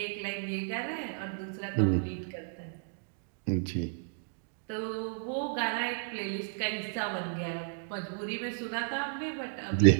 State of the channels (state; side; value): silent; left; digital silence